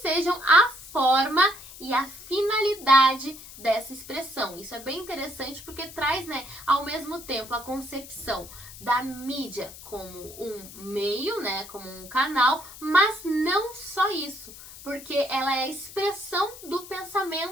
a forma e a finalidade dessa expressão. Isso é bem interessante porque traz, né, ao mesmo tempo a concepção da mídia como um meio, né, como um canal, mas não só isso, porque ela é a expressão do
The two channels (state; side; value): noise; left; hiss, 16 dB below the sound